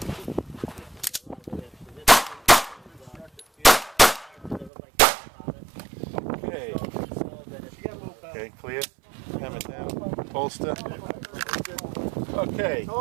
Okay, clear. Hammer down. Bolster. Okay,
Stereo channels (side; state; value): left; drops out; at 4.7 s